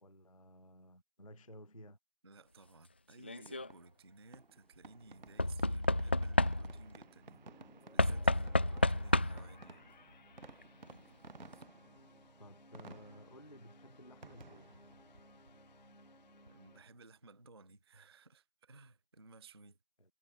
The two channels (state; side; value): inverted; both; correlation -0.78